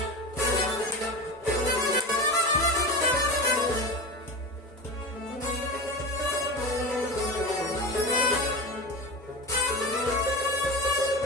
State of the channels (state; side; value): normal; both; correlation 0.26